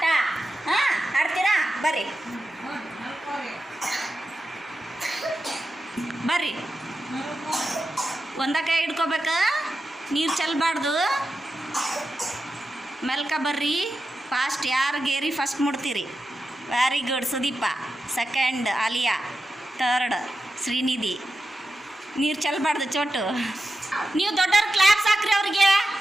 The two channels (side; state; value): both; normal; correlation 0.90